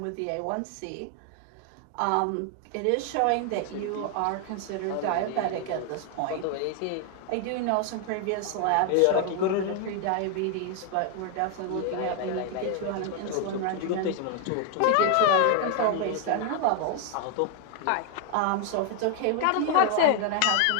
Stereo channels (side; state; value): both; different; correlation 0.00